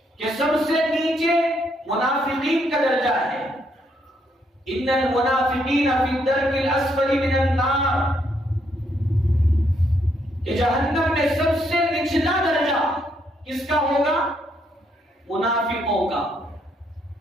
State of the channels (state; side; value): normal; both; correlation 0.74